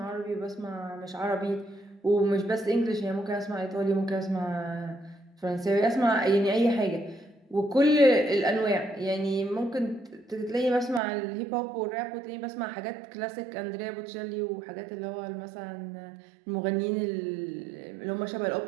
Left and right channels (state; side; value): drops out; left; at 11.0 s